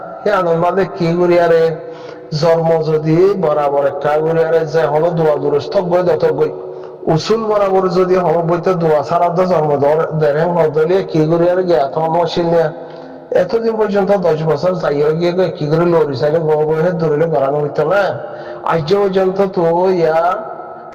হে আনন্দ কি করি আরে জন্ম যদি বরাবর একটা করি আরে যে হলো দোয়া দুরস্থ বই দত বই উসুল বরাবর যদি হলো বইতে দোয়া ছাড়া তো জন্ম দেড় হদলিয়ে কি করি আরে গে এত মশিল নিয়ে এতদিন পর্যন্ত 10 বছর যাই হয়ে গিয়ে কি করে লড়ি চাইলে বহে ধরিলে করানো হইতো না আজ পর্যন্ত তো ইয়া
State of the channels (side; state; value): both; identical; correlation 1.00